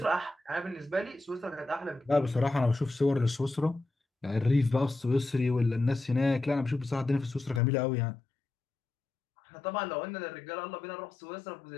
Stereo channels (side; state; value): right; drops out; at 7.6 s